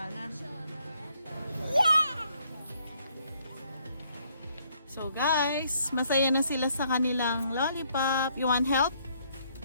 So guys, masaya na sila sa kanilang lollipop. You want help?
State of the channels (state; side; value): inverted; both; correlation -0.69